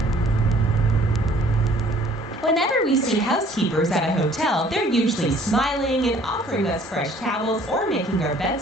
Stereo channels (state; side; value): normal; both; correlation 0.57